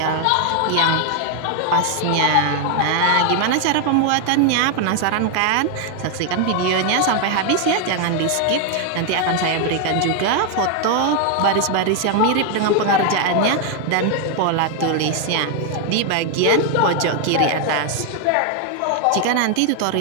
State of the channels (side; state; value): both; different; correlation 0.00